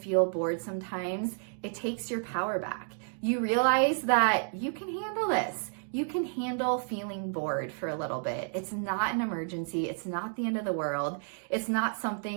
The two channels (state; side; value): silent; left; 57 dB below the other